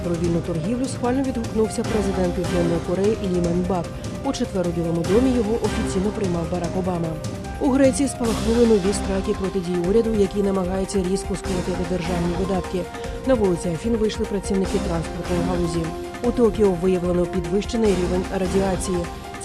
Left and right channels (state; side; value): identical; both; correlation 1.00